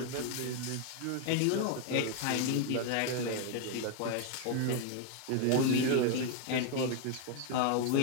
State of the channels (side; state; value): both; different; correlation 0.01